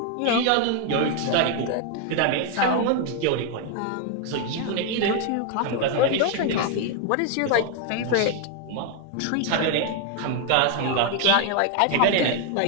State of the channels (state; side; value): different; both; correlation 0.01